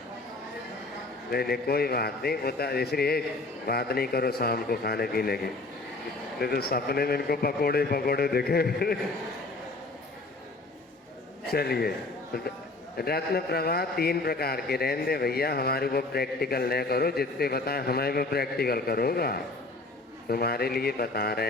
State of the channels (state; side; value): quieter; right; 3.1 dB